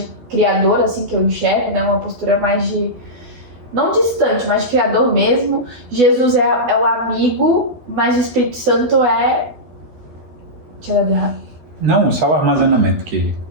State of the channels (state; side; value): late; left; 12 ms